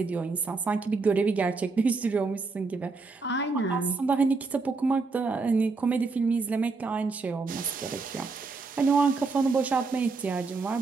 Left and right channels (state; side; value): quieter; left; 4.1 dB